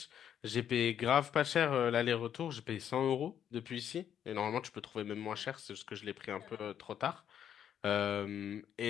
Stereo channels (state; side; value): quieter; right; 9.3 dB